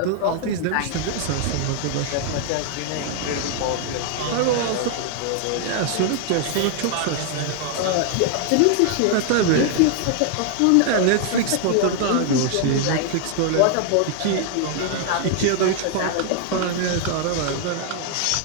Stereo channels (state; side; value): different; both; correlation 0.00